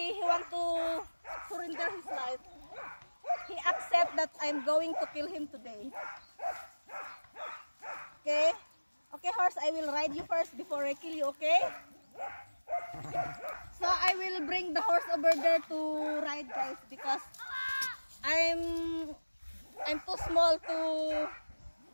he want to surrender his life. He accept that I'm going to kill him today. Okay? Okay, horse, I will ride you first before I kill you, okay? So I will bring the horse over there to ride, guys, because I'm too small to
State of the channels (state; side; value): inverted; both; correlation -1.00